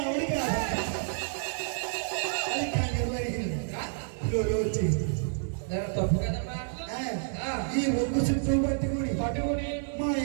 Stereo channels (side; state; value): left; silent; 58 dB below the other